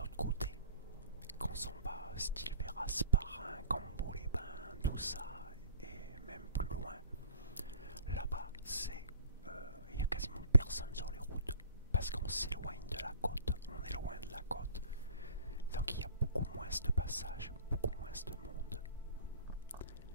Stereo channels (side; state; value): both; inverted; correlation -0.50